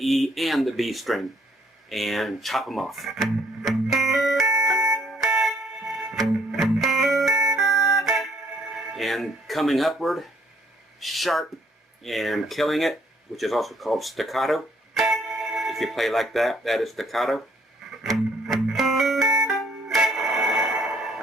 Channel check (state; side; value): normal; both; correlation 0.65